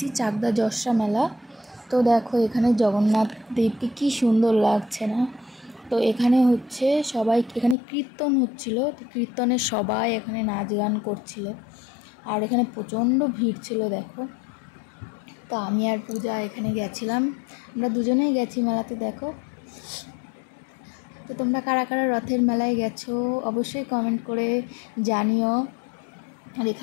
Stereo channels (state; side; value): drops out; right; at 7.8 s